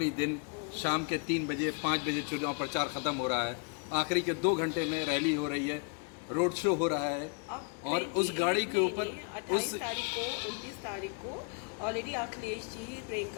दिन, शाम के 3 बजे 5 बजे चुनाव प्रचार खत्म हो रहा है, आखिरी के 2 घंटे में रैली हो रही है, रोड शो हो रहा है। अब और उस गाड़ी के ऊपर 28 तारीख को 29 तारीख को ऑलरेडी अखिलेश जी,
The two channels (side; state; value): right; quieter; 38.0 dB